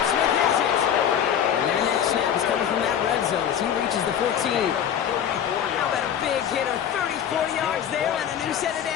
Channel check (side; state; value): right; quieter; 9.2 dB